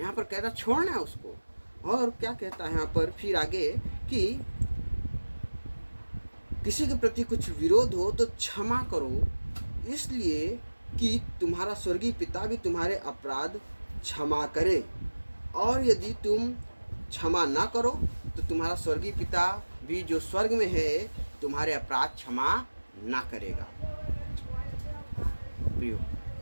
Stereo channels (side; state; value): both; inverted; correlation -1.00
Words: पर कहता छोड़ना है उसको। और क्या कहता है यहाँ पर फिर आगे कि किसी के प्रति कुछ विरोध हो तो क्षमा करो, इसलिए कि तुम्हारा स्वर्गीय पिता भी तुम्हारे अपराध क्षमा करे। और यदि तुम क्षमा ना करो तो तुम्हारा स्वर्गीय पिता भी जो स्वर्ग में है तुम्हारे अपराध क्षमा ना करेगा। प्रियो,